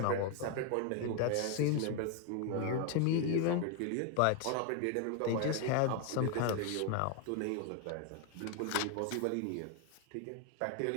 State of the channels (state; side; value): different; both; correlation 0.01